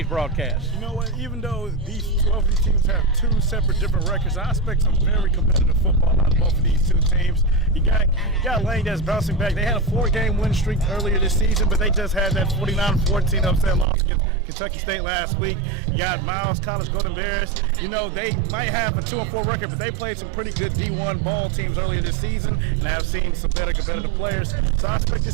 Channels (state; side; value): drops out; left; at 13.9 s